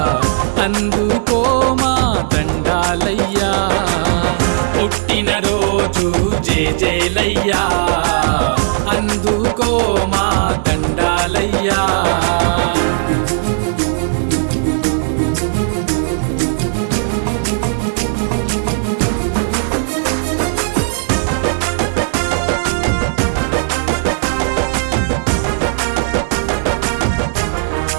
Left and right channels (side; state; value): left; silent; 65 dB below the other